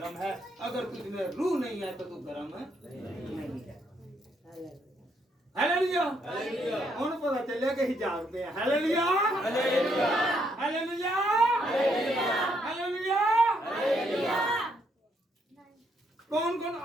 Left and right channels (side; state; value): both; normal; correlation 0.74